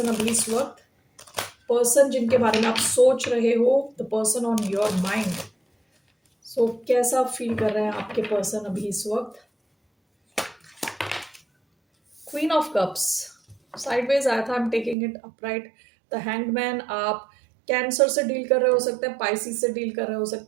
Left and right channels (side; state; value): left; drops out; at 15.0 s